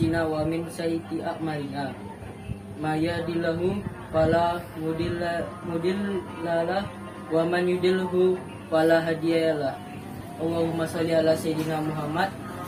wa min sayyiati a'malina. May yahdihillahu fala mudhillalah wa man yudlilhu fala hadiyalah. Allahumma shalli ala sayyidina Muhammad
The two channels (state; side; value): identical; both; correlation 1.00